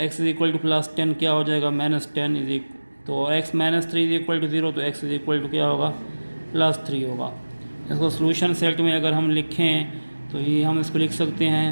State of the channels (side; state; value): both; inverted; correlation -1.00